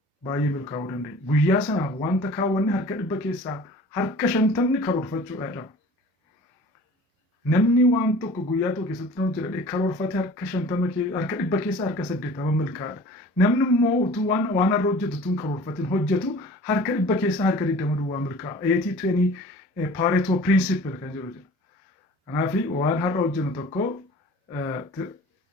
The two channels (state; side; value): normal; both; correlation 0.44